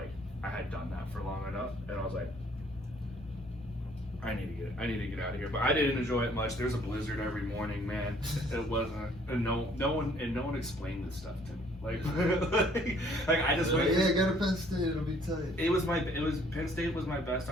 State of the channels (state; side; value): normal; both; correlation 0.60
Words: I had done that for long enough, and I was like, I need to get out of here. But I didn't enjoy it much. There's a blizzard every morning, man. It wasn't, and no one explained this stuff to me. Like I just went. Yeah, go to Penn State. It'll be tight. Penn State was my best